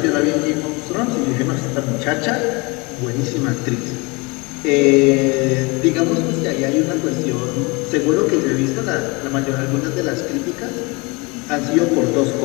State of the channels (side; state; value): right; quieter; 27.1 dB